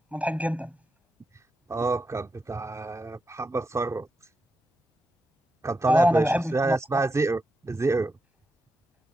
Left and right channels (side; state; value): both; normal; correlation 0.87